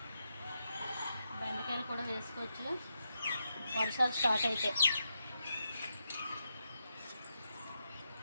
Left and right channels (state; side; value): inverted; both; correlation -0.85